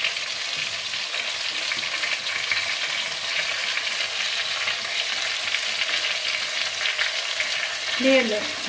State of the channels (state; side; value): identical; both; correlation 1.00